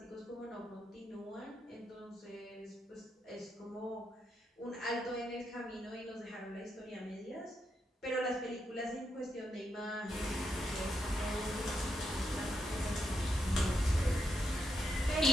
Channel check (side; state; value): both; normal; correlation 0.82